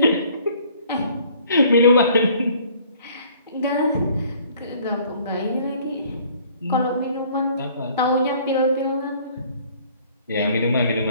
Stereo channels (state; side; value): inverted; both; correlation -0.56